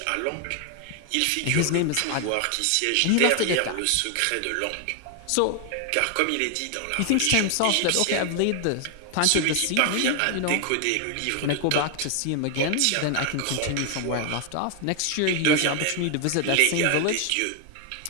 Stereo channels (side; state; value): both; different; correlation 0.00